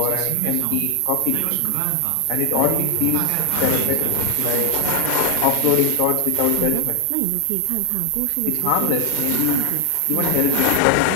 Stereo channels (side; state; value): both; different; correlation 0.00